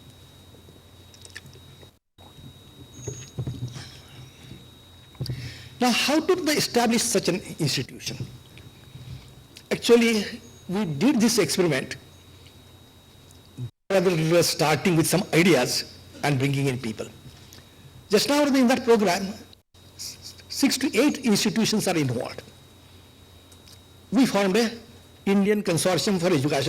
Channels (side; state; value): both; identical; correlation 1.00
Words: Now, how did they establish such an institution? Actually, we did this experiment rather than starting with some ideas and bringing in people. Just now in that program, 6 to 8 institutions are involved. We formed an Indian Consortium for